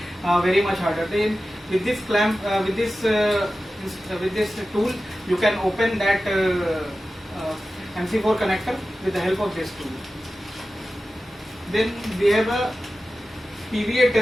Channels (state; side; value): normal; both; correlation 0.94